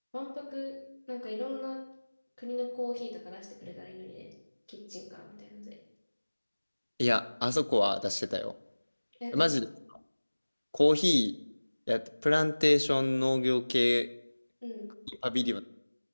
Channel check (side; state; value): both; inverted; correlation -1.00